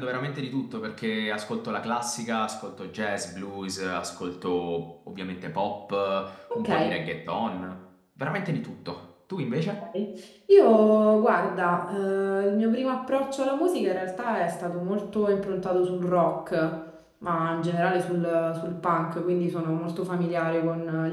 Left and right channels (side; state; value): both; identical; correlation 1.00